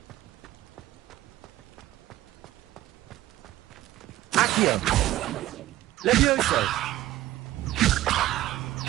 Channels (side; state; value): left; quieter; 15.1 dB